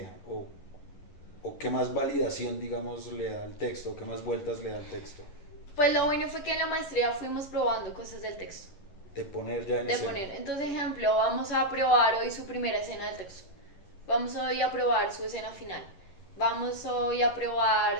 o qué más validación, digamos, le da al texto, o qué más vueltas le da al texto. Pues lo bueno fue que en la maestría fuimos probando cosas del texto. De poner ya en escena. Entonces, ejemplo, vamos a probar hoy su primera escena del texto. Vamos hoy a probar su escena final. Vamos hoy a probar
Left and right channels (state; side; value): late; right; 11 ms